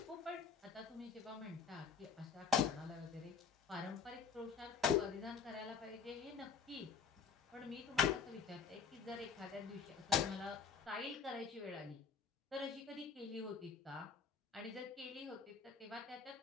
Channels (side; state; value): right; quieter; 6.3 dB